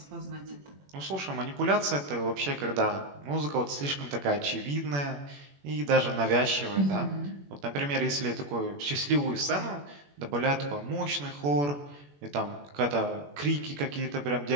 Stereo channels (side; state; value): left; late; 21 ms